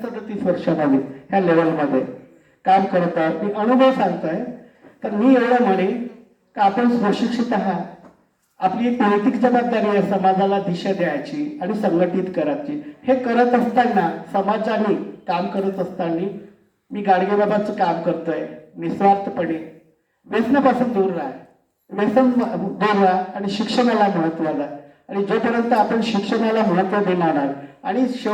वर्षामध्ये ह्या लेवलमध्ये काम करत आहे. मी अनुभव सांगतोय. तर मी एवढं म्हणेन का आपण सुशिक्षित आहात, आपली एक नैतिक जबाबदारी आहे समाजाला दिशा द्यायची आणि संघटित करायची. हे करत असताना, समाजाने काम करत असताना मी गाडगेबाबांचं काम करतोय निस्वार्थपणे. व्यसनापासून दूर राहा, व्यसन दूर राहा आणि शिक्षणाला महत्त्व द्या. आणि जोपर्यंत आपण शिक्षणाला महत्त्व देणार आहात, आणि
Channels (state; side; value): identical; both; correlation 1.00